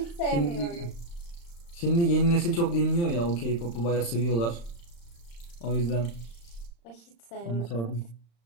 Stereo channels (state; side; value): late; right; 35 ms